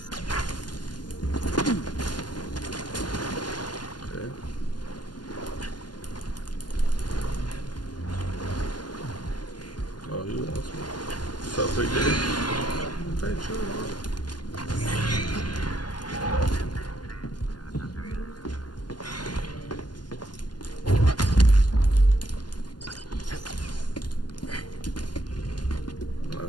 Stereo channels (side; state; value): right; late; 0.71 ms